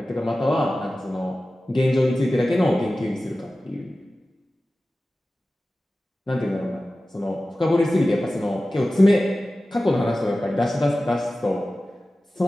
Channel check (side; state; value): both; normal; correlation 0.95